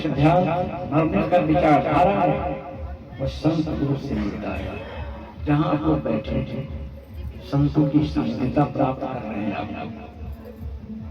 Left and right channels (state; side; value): identical; both; correlation 1.00